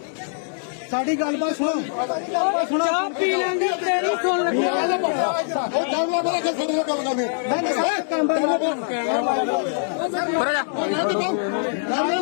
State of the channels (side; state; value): right; silent; 64 dB below the other